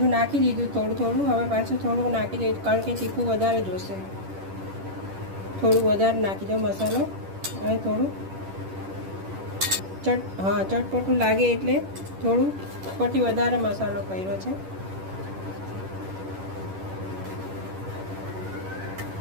નાખી દીધું થોડું થોડું. હવે પાછું થોડું નાખી દઈશ કારણ કે તીખું વધારે જોશે. થોડું વધારે નાખી દો મસાલો અને થોડું ચટપટું લાગે એટલે થોડું ઉપરથી વધારે મસાલો કર્યો છે.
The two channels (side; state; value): left; late; 10 ms